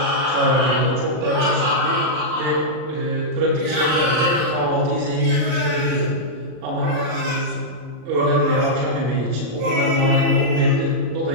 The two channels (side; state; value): left; late; 39 ms